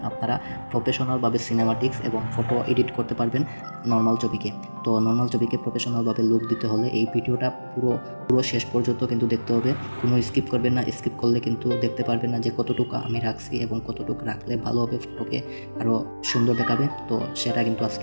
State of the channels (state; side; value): inverted; both; correlation -1.00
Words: আপনারা প্রফেশনালভাবে সিনেমাটিক্স এবং ফটো এডিট করতে পারবেন নর্মাল ছবিকে। তো নর্মাল ছবিকে প্রফেশনালভাবে লুক দিতে হলে এই ভিডিওটা পুরো শেষ পর্যন্ত কিন্তু দেখতে হবে। কোনো স্কিপ করবেন না। স্কিপ করলে কিন্তু দেখতে পারবেন না যে কতটুকু আমি রাখছি এবং কতটুকু রাখলে ভালো হবে, ফটোকে আরও সুন্দর দেখাবে। তো সেটা কিন্তু